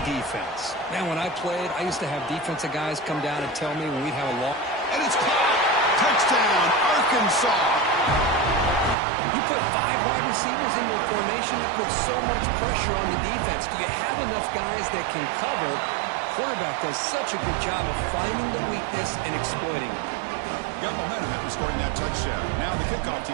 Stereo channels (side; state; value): left; drops out; at 9.0 s